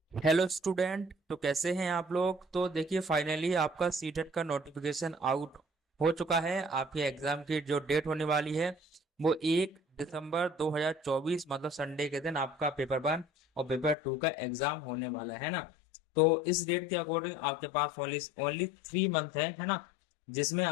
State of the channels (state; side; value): drops out; right; at 14.0 s